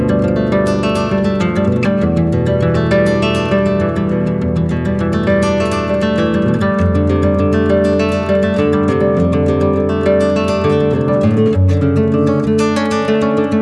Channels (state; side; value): identical; both; correlation 1.00